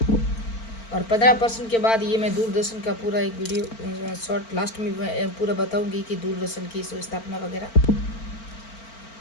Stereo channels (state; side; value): late; right; 4.4 ms